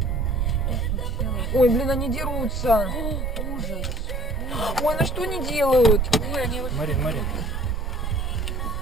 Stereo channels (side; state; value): both; normal; correlation 0.58